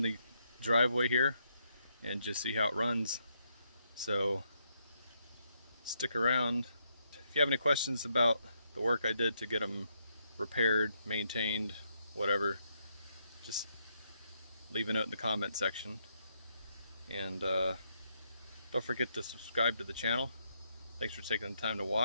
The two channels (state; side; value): inverted; both; correlation -0.77